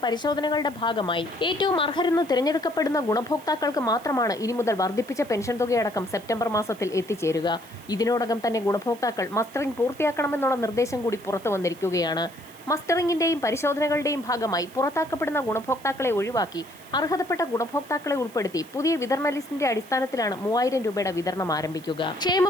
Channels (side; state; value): right; noise; hiss, 23 dB below the sound